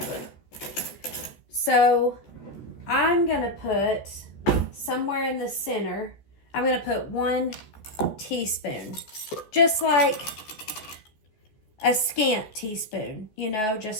So I'm gonna put somewhere in the center, I'm gonna put 1 teaspoon, just like a scant teaspoon, you know,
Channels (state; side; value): late; right; 14 ms